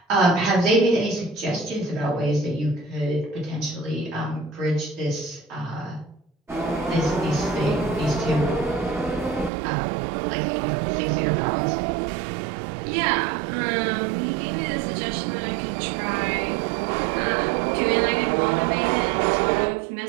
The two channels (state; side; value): drops out; left; at 9.5 s